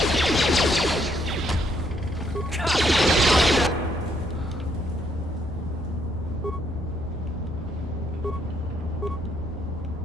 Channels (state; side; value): normal; both; correlation 0.71